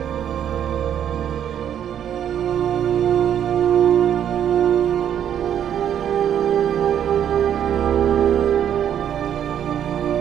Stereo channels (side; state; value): left; quieter; 9.6 dB